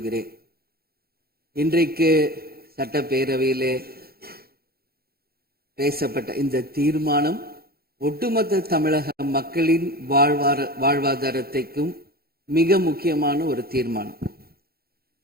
இன்றைக்கு சட்டப்பேரவையிலே பேசப்பட்ட இந்த தீர்மானம் ஒட்டுமொத்த தமிழக மக்களின் வாழ்வாதாரத்தைக்கும் மிக முக்கியமான ஒரு தீர்மானம்.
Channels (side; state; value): left; late; 0.45 ms